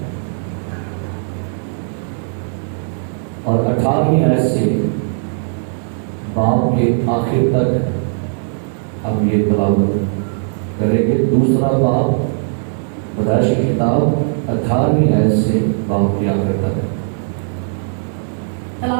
اور 18ویں آیت سے باب کے آخر تک ہم یہ تلاوت کریں گے۔ 2 باب پیدائش کی کتاب 18ویں آیت سے باب کے آخر تک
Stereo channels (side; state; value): left; silent; digital silence